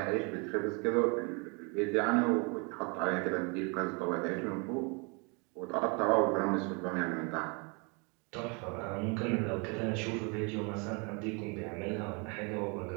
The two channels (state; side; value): quieter; left; 32.3 dB